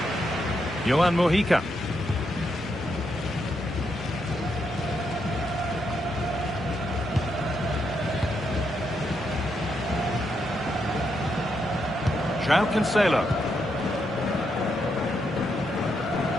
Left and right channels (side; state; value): both; normal; correlation 0.80